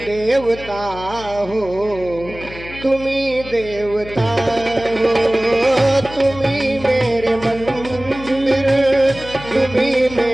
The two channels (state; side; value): noise; left; hum, 15 dB below the sound